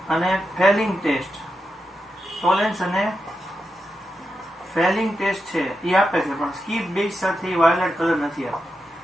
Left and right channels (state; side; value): normal; both; correlation 0.87